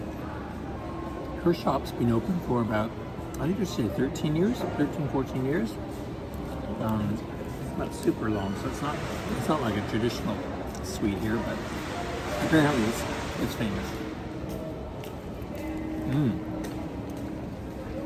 her shop's been open for about, I think they said 13 years, 14 years. Not super long, so it's not like a traditional sweet here, but apparently it's famous.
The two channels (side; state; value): both; identical; correlation 1.00